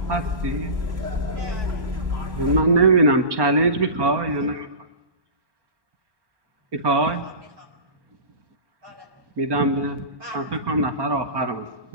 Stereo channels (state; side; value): late; left; 1.2 ms